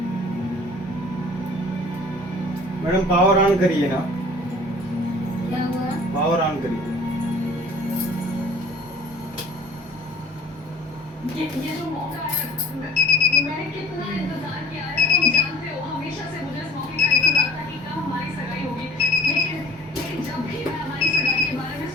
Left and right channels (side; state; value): both; normal; correlation 0.50